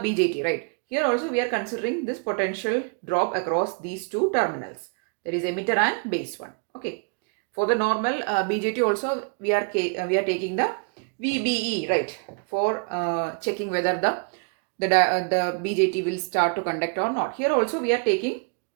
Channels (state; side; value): quieter; left; 37.2 dB